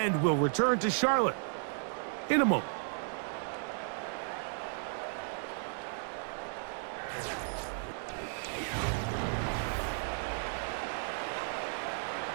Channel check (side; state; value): left; silent; 55 dB below the other